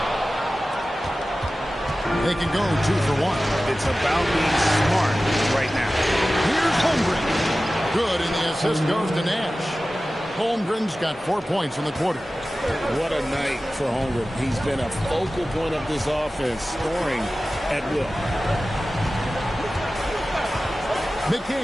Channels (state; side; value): normal; both; correlation 0.96